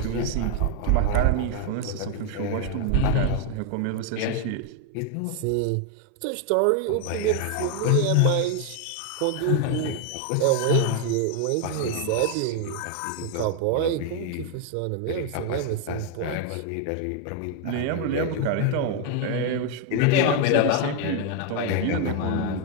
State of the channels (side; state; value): both; different; correlation 0.01